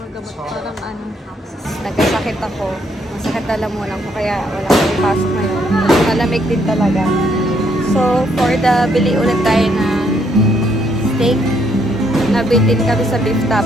gamot. Parang ano, nagkasakit ako. Masakit lalamunan ko kaya wala akong ipasok ngayon. Malamig din talaga. So, for the bili ulit tayo na steak. Nabitin kami sa beef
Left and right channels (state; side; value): normal; both; correlation 0.72